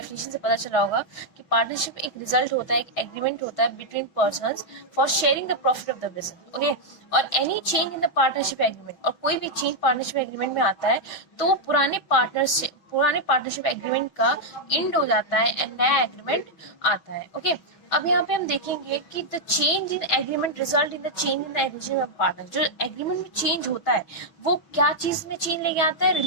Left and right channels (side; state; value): right; late; 6.2 ms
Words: से पता चला होगा कि partnership एक result होता है, एक एग्रीमेंट होता है between persons for sharing the profit of the business. Okay, और any change in the partnership agreement, और कोई भी चेंज पार्टनरशिप एग्रीमेंट में आता है तो पुराने पार्टनरशिप एग्रीमेंट का एंड हो जाता है एंड नया एग्रीमेंट आता है. ओके, अब यहाँ पे हम देखेंगे कि the change in agreement result in the change in the agreement of partner. जो एग्रीमेंट में चेंज होता है वो क्या चीज में चेंज लेके आता है,